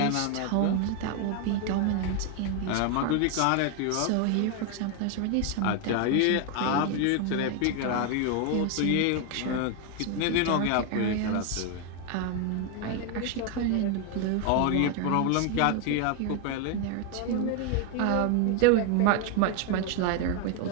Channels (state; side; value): different; both; correlation 0.01